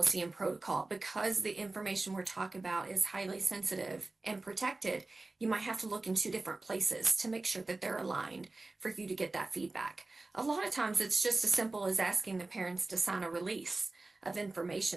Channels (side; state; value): left; quieter; 3.3 dB